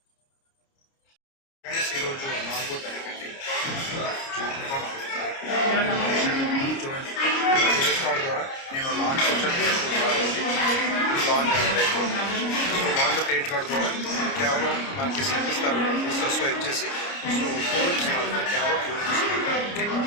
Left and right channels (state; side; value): late; right; 29 ms